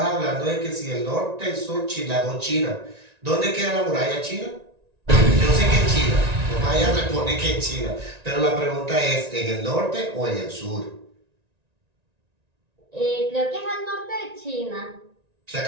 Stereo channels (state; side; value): late; left; 1.9 ms